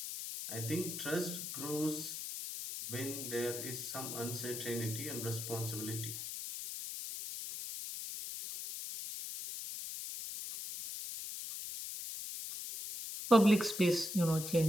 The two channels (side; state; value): left; noise; hiss, 6 dB below the sound